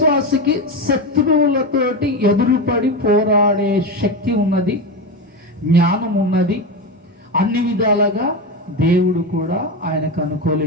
శత్రువులతోటి ఎదురుపడి పోరాడే శక్తి ఉన్నది, జ్ఞానం ఉన్నది. అన్ని విధాలుగా దేవుడు కూడా ఆయనకు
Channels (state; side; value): normal; both; correlation 0.16